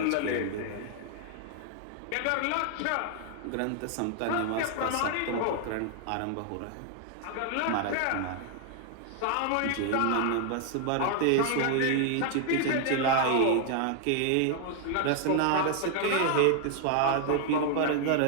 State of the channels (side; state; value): both; different; correlation 0.00